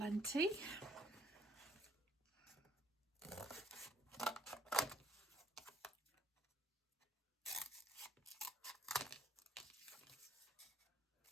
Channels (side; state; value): both; normal; correlation 0.62